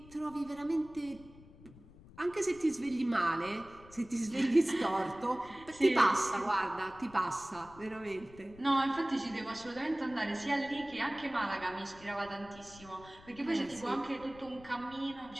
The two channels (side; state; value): left; noise; rumble, 21 dB below the sound